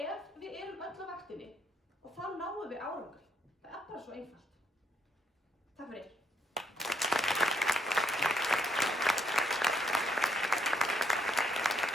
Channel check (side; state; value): both; normal; correlation 0.74